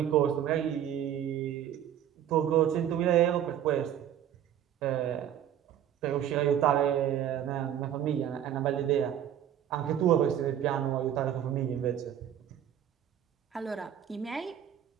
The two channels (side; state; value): left; quieter; 10.3 dB